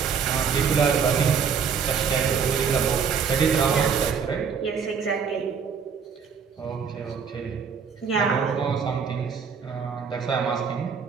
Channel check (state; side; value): quieter; left; 6.5 dB